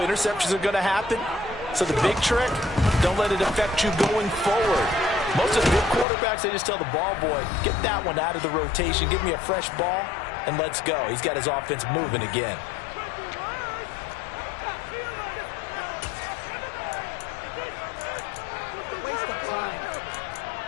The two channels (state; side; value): drops out; right; at 6.1 s